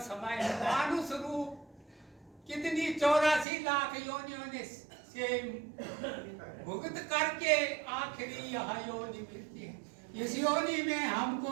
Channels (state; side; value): drops out; left; at 3.5 s